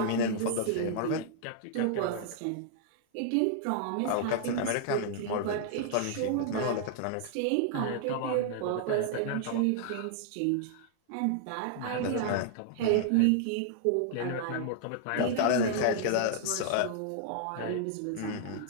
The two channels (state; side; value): different; both; correlation -0.01